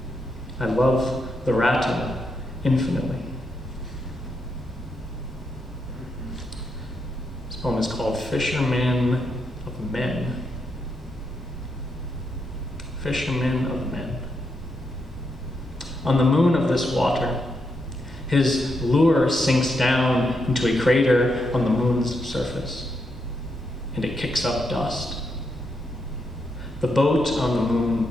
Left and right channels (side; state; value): both; normal; correlation 0.81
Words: I love the rattle infinitely. This poem is called Fisherman of Men. Fisherman of Men. On the moon of this water, his lure sinks down into a crater on the moon's surface, and it kicks up dust. The boat on the moon